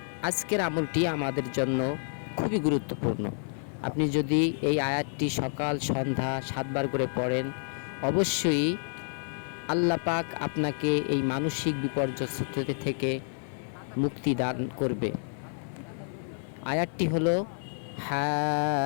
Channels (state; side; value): silent; right; 58 dB below the other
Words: আজকের আমলটি আমাদের জন্য খুবই গুরুত্বপূর্ণ। আপনি যদি এই আয়াতটি সকাল সন্ধ্যা 7 বার করে পড়েন, অবশ্যই আল্লাহ পাক আপনাকে এই মানসিক বিপর্যস্ততা থেকে মুক্তি দান করবে। আয়াতটি হলো